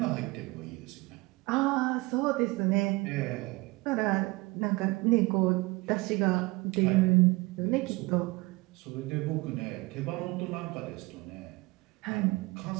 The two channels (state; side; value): quieter; left; 23.4 dB